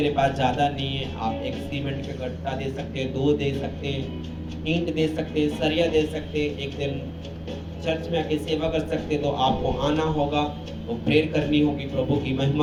पास ज़्यादा नहीं है। आप एक सीमेंट का गट्टा दे सकते हैं, 2 दे सकते हैं, ईंट दे सकते हैं, सरिया दे सकते हैं। एक दिन चर्च में आके सेवा कर सकते हैं। तो आपको आना होगा, वो प्रेयर करनी होगी प्रभु की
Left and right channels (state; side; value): identical; both; correlation 1.00